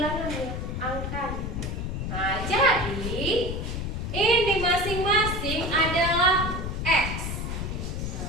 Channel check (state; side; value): noise; left; rumble, 4 dB below the sound